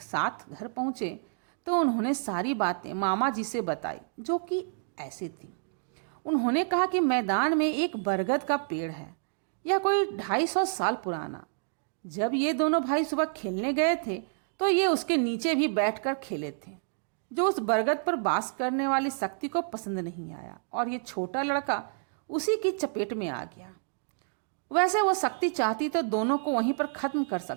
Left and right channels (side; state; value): left; silent; digital silence